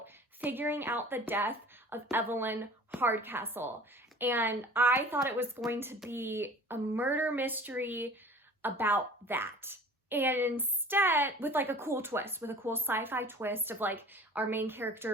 figuring out the death of Evelyn Hardcastle. And I thought it was going to be a murder mystery about that. And instead, with like a cool twist, with a cool sci-fi twist of like our main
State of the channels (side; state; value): both; normal; correlation 0.45